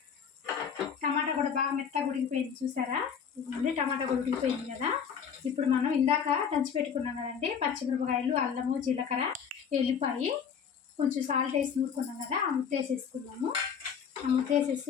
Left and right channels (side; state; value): right; quieter; 7.2 dB